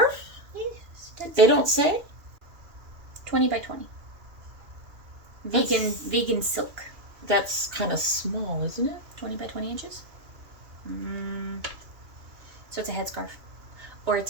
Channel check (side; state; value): left; late; 2.6 ms